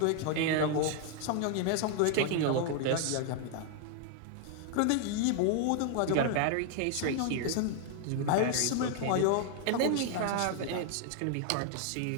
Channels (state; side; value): different; both; correlation 0.00